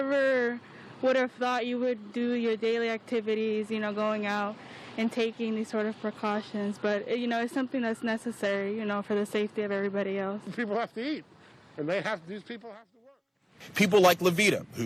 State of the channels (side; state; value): both; identical; correlation 1.00